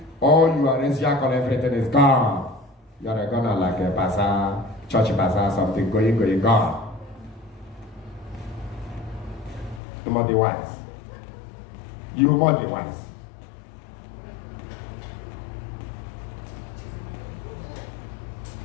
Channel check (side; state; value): right; drops out; at 9.8 s